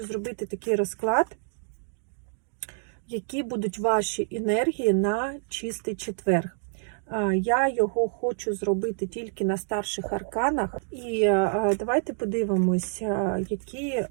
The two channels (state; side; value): silent; left; 60 dB below the other